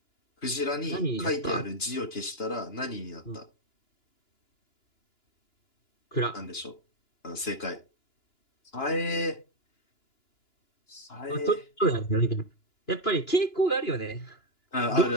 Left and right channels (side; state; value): right; late; 2.9 ms